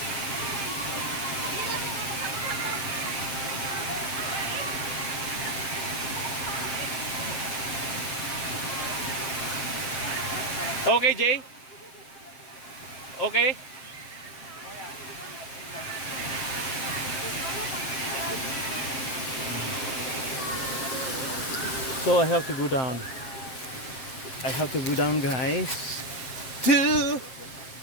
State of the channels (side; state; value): right; late; 7.6 ms